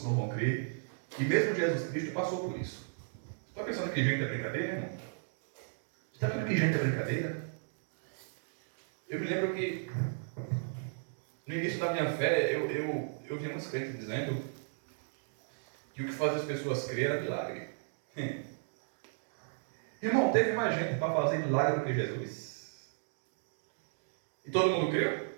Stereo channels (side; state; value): left; silent; digital silence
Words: não vão crer. E mesmo Jesus Cristo passou por isso. Você está pensando que gente é brincadeira, irmão? Você está vendo que gente é brincadeira? Eu me lembro que no início da minha fé, eu vi muitos crentes dizendo que o que faz as pessoas crer era milagre. Irmão, teve mais gente para fazer milagre do que Jesus. E todo mundo creu?